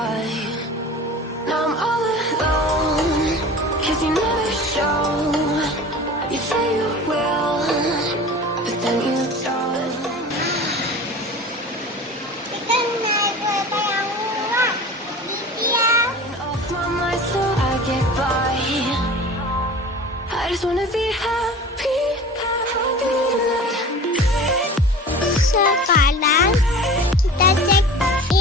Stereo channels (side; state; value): both; normal; correlation 0.38